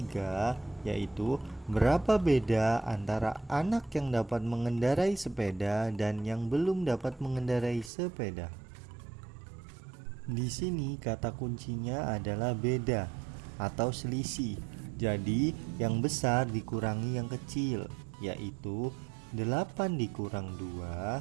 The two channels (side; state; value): left; drops out; at 7.9 s